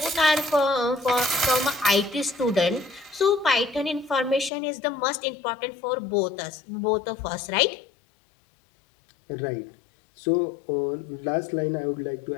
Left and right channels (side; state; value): right; drops out; at 4.5 s